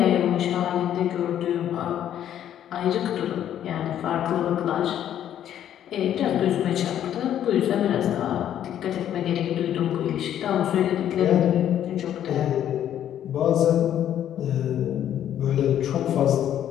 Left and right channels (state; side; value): quieter; right; 10.6 dB